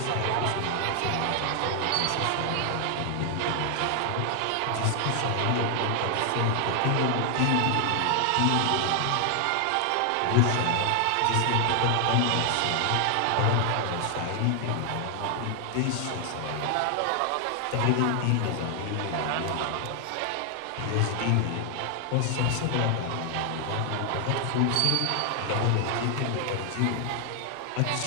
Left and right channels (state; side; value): different; both; correlation 0.00